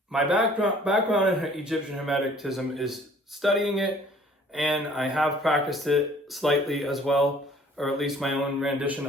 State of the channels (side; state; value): both; normal; correlation 0.54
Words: my background in Egyptian Hermeticism is studying it, and I have practiced it slightly as well, or at least my own rendition